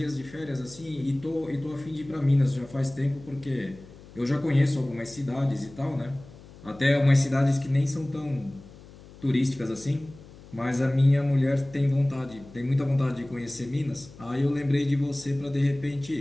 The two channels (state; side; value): noise; left; hum, 20 dB below the sound